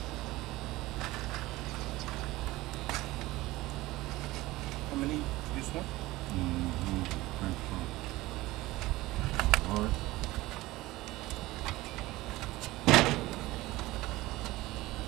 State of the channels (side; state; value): left; quieter; 18.7 dB